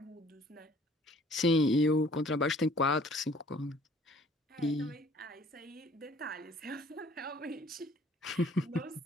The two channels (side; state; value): both; normal; correlation 0.56